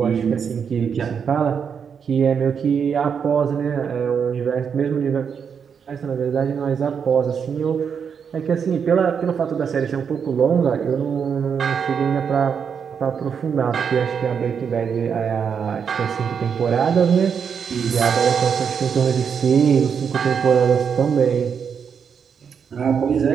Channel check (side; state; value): left; quieter; 6.9 dB